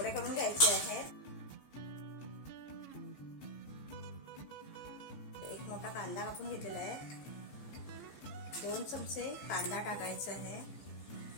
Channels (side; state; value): right; late; 14 ms